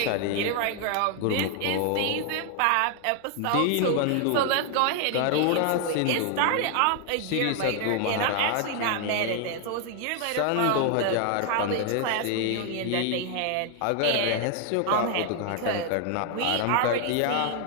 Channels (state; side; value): different; both; correlation 0.00